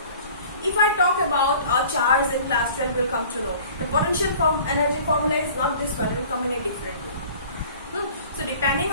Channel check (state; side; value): inverted; both; correlation -0.47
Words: If I talk about a charge in class 12, you will come to know the potential energy formula is not this one, it will come in a different way. So depending